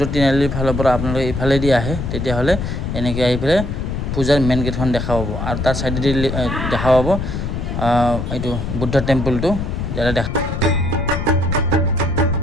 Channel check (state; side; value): noise; left; rumble, 3 dB below the sound